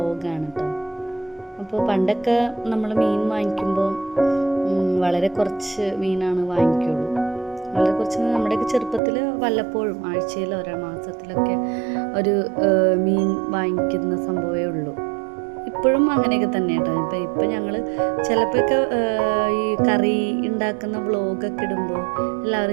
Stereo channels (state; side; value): drops out; left; at 9.0 s